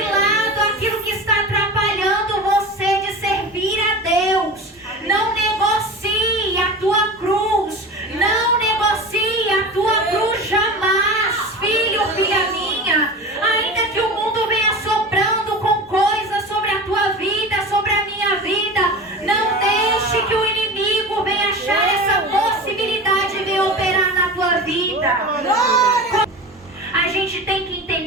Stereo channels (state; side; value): normal; both; correlation 0.31